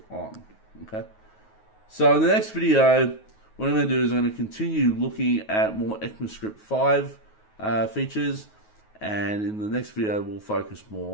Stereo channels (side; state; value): right; late; 9.4 ms